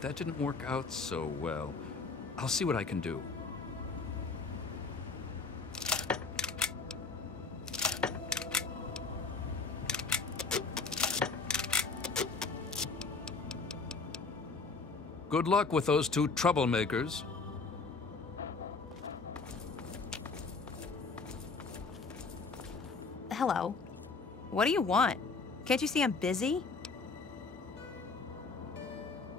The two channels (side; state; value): right; quieter; 4.3 dB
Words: that didn't work out so well. I'll see what I can do. Good luck with those two troublemakers. Hello. What do you want? Can't you see I'm busy?